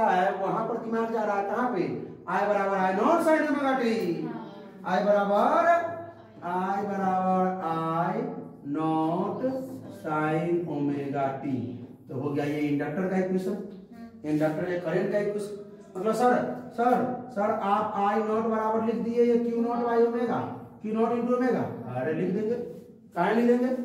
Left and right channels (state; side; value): identical; both; correlation 1.00